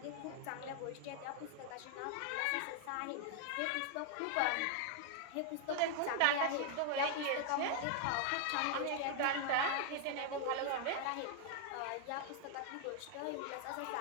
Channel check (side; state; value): both; different; correlation 0.00